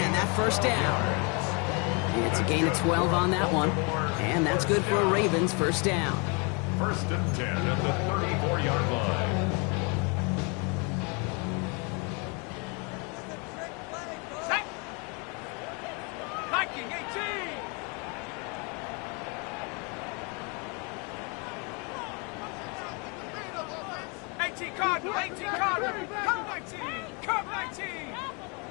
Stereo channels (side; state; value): right; quieter; 32.9 dB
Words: that 1st down. It's a gain of 12 on that one, and that's good for a Ravens 1st down. 1st and 10 at the 34-yard line. Viking 18. 18 Cardinal, 18 Cardinal. Come 19, come 19.